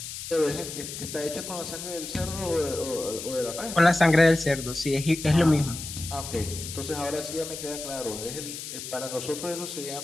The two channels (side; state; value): left; noise; hiss, 8 dB below the sound